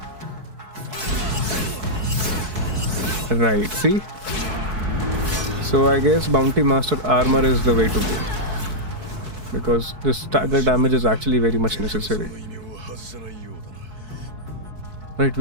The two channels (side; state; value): left; late; 4.6 ms